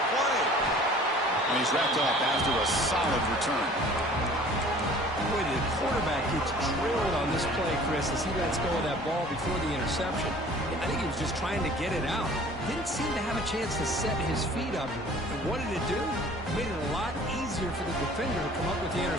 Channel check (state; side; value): normal; both; correlation 0.49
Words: play. And he's wrapped up after a solid return. Boy, the quarterback gets drilled on this play, Chris, as he lets go of that ball before the interception. I think he was just trying to get it out. Didn't seem to have a chance to set his feet up. And what did it do? Made it a lot easier for the defender to come up with the